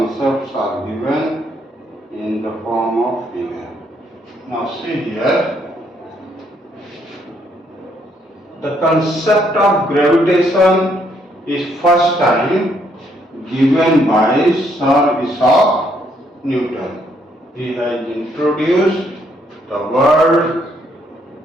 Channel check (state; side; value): normal; both; correlation 0.71